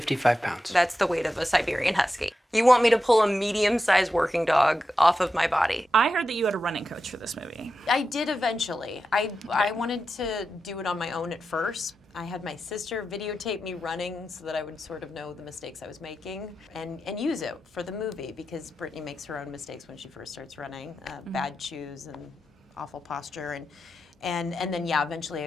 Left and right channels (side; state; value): both; normal; correlation 0.90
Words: pounds. That's the weight of a Siberian Husky. You want me to pull a medium-sized working dog off of my body. I heard that you had a running coach for this movie. I did eventually. I wanted to do it on my own at first. I had my sister videotape me running so that I would sort of know the mistakes I was making and use it for the movie, because Brittany makes her own mistakes when she first starts running. Bad shoes and awful posture. And then, yeah, eventually